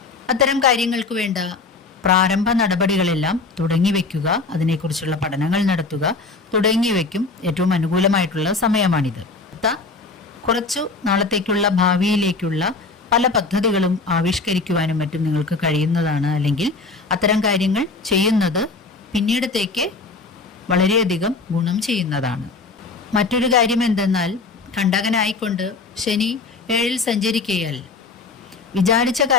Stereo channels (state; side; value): quieter; right; 4.0 dB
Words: അത്തരം കാര്യങ്ങൾക്ക് വേണ്ട പ്രാരംഭ നടപടികളെല്ലാം തുടങ്ങിവെക്കുക, അതിനെക്കുറിച്ചുള്ള പഠനങ്ങൾ നടത്തുക തുടങ്ങിയവയ്ക്കും ഏറ്റവും അനുകൂലമായിട്ടുള്ള സമയമാണിത്. കുറച്ചു നാളത്തേക്കുള്ള ഭാവിയിലേക്കുള്ള പല പദ്ധതികളും ആവിഷ്കരിക്കുവാനും മറ്റും നിങ്ങൾക്ക് കഴിയുന്നതാണ്. അല്ലെങ്കിൽ അത്തരം കാര്യങ്ങൾ ചെയ്യുന്നത് പിന്നീടത്തേക്ക് വളരെയധികം ഗുണം ചെയ്യുന്നതാണ്. മറ്റൊരു കാര്യം എന്തെന്നാൽ, കണ്ടകനായിക്കൊണ്ട് ശനി 7-ൽ സഞ്ചരിക്കയാൽ വിചാരിച്ച